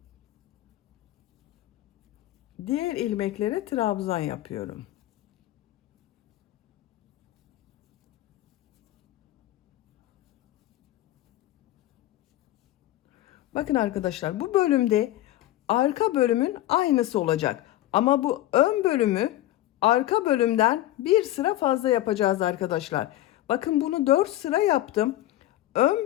Diğer ilmeklere trabzan yapıyorum. Bakın arkadaşlar, bu bölümde arka bölümün aynısı olacak. Ama bu ön bölümü arka bölümden bir sıra fazla yapacağız arkadaşlar. Bakın bunu 4 sıra yaptım.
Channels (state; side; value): quieter; right; 14.9 dB